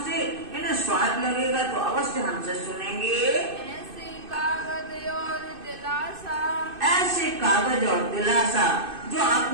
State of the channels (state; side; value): late; left; 2.6 ms